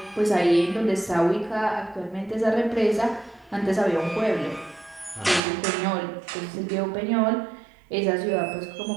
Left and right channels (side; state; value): left; drops out; at 5.4 s